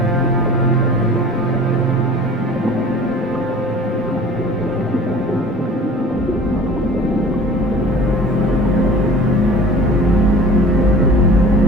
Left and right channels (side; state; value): both; normal; correlation 0.43